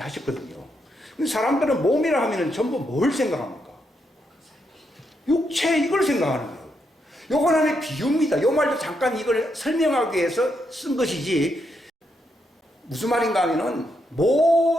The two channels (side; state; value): both; normal; correlation 0.80